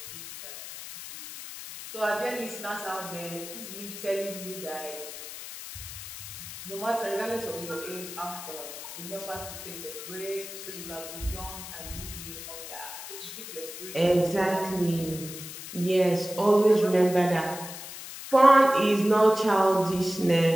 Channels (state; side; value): noise; left; hiss, 11 dB below the sound